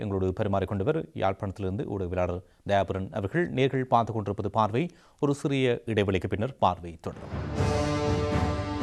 எங்களோடு பரிமாறிக்கொண்டவர் யாழ்ப்பாணத்திலிருந்து ஊடகவியலாளர் தயாபரன் அவர்கள். நேர்கள் பார்த்துக் கொண்டிருப்பது பார்வை. ஒரு சிறிய இடைவெளிக்கு பின்னர் பார்வை தொடரும்.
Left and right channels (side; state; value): both; identical; correlation 1.00